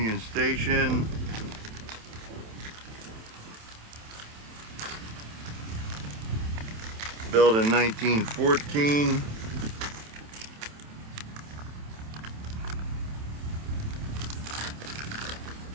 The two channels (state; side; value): late; left; 27 ms